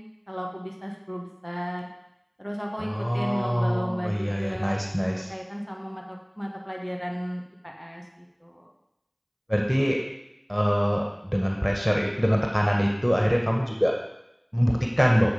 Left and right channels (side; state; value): both; identical; correlation 1.00